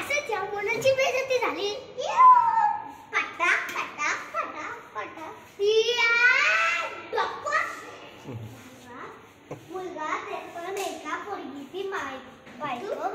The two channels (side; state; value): both; identical; correlation 1.00